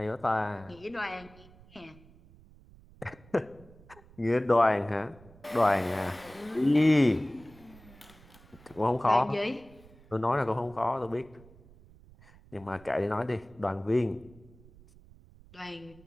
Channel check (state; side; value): noise; right; rumble, 24 dB below the sound